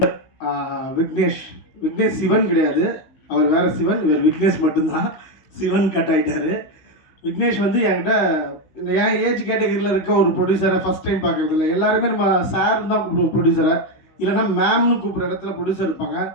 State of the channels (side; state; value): right; late; 16 ms